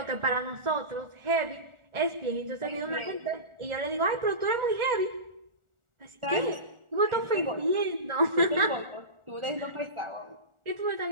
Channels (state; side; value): late; left; 1.4 ms